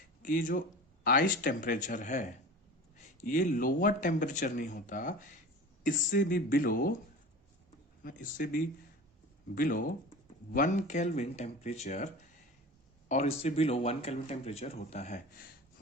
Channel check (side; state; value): both; normal; correlation 0.35